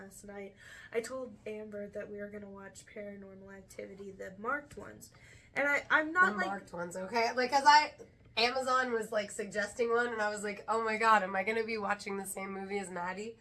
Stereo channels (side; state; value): both; identical; correlation 1.00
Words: night, I told Amber that we were gonna watch Paranormal Activity, the marked ones, and I'm not the like marked ones, okay? Like, Amazon was, like, suggesting one, and I was like, oh my god, am I going to be watching the same movie as Maddie?